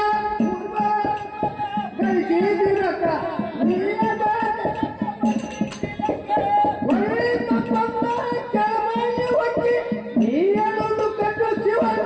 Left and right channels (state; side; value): identical; both; correlation 1.00